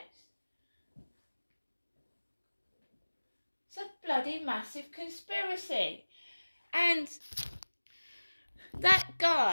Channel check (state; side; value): inverted; both; correlation -1.00